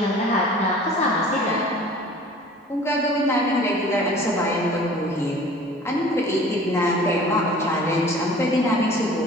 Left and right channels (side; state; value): both; normal; correlation 0.46